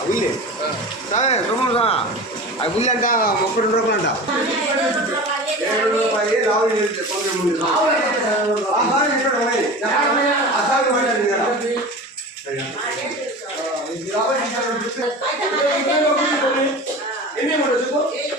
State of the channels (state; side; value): normal; both; correlation 0.33